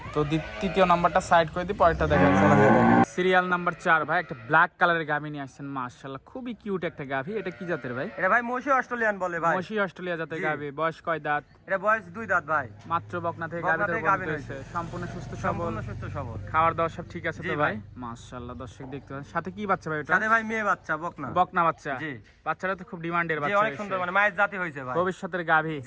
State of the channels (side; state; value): both; identical; correlation 1.00